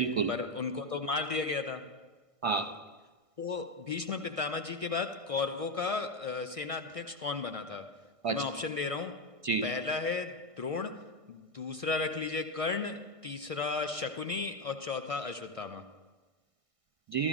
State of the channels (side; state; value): left; late; 1.6 ms